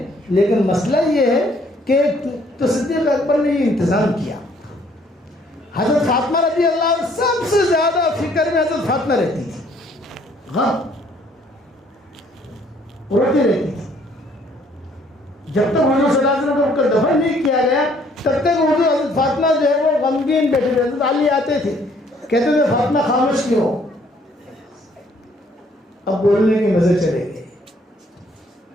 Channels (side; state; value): both; normal; correlation 0.63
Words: لیکن مسئلہ یہ ہے کہ تو صدیق اکبر نے یہ انتظام کیا. حضرت فاطمہ رضی اللہ عنہ سب سے زیادہ فکر میں حضرت فاطمہ رہتی تھی، ہاں روتی رہتی تھی. جب تک حضور صلی اللہ علیہ وسلم کو دفن نہیں کیا گیا تب تک حضور حضرت فاطمہ جو ہے وہ غمگین بیٹھے تھے. حضرت علی آتے تھے کہتے تھے فاطمہ خاموش کیوں ہو؟ اب بولنے کے مزے چلے گئے،